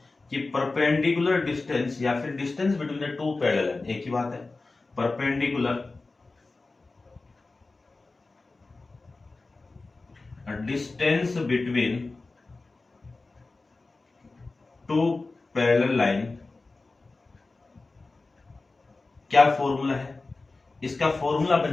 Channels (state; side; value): quieter; right; 3.5 dB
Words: कि परपेंडिकुलर डिस्टेंस या फिर distance between the two parallel line, एक ही बात है। Perpendicular distance between two parallel line, क्या फॉर्मूला है इसका? फॉर्मूला